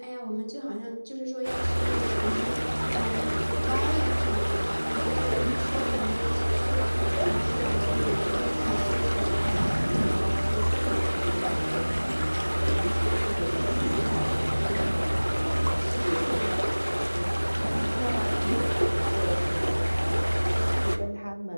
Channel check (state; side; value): inverted; both; correlation -1.00